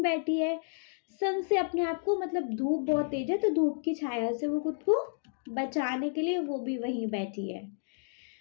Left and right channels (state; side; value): silent; right; digital silence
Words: बैठी है, सन से अपने आप को, मतलब धूप बहुत तेज है तो धूप की छाया से वो खुद को बचाने के लिए वो भी वहीं बैठी है।